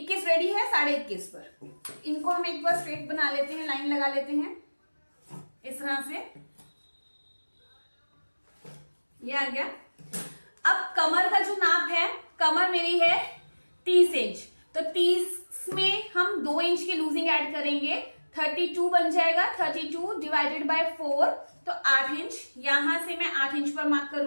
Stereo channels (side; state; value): both; inverted; correlation -1.00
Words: रेडी है, 21.5 पर। इनको हम एक बार स्ट्रेट बना लेते हैं, लाइन लगा लेते हैं इस तरह से। ये आ गया। अब कमर का जो नाप है, कमर मेरी है 30 इंच, तो 30 में हम 2 इंच की लूजिंग ऐड करेंगे, 32 बन जाएगा। 32 डिवाइडेड बाय 4 तो 8 इंच। यहां से मैं 8 इंच पर मार्क